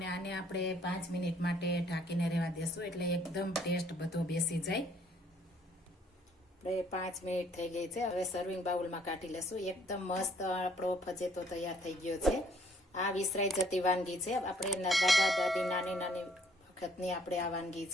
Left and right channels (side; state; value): both; normal; correlation 0.63